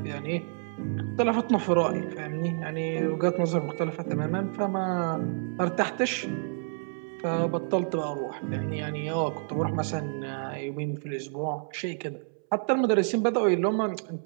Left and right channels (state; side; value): silent; left; 58 dB below the other